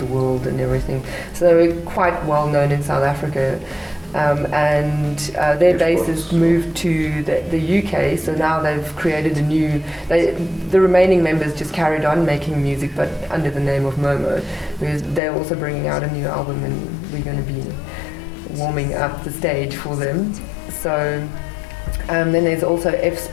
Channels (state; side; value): drops out; right; at 15.2 s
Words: world and everything. So they were quite well known in South Africa. And their bassist moved to the UK, so now they've created a new... the remaining members just carried on making music, but under the name of Momo. They're also bringing out a new album, and we're going to be warming up the stage for them. So then there's also